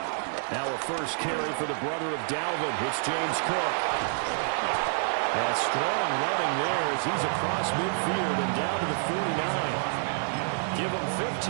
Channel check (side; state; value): left; silent; digital silence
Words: Now a first carry for the brother of Dalvin. It's James Cook. And strong running there as he's across midfield and down to the 49. Give them